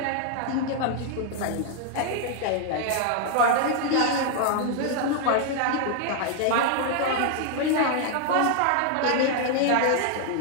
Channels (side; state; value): both; different; correlation 0.00